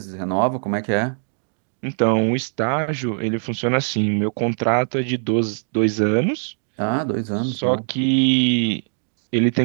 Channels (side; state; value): left; silent; digital silence